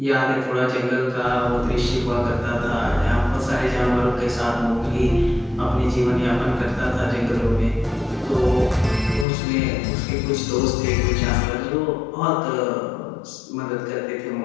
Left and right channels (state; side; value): drops out; right; at 9.2 s